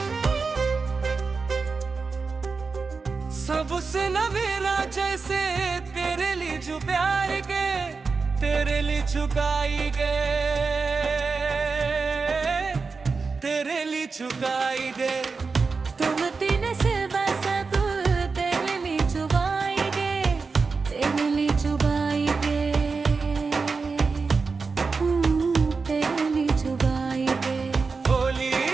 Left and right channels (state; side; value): quieter; left; 4.6 dB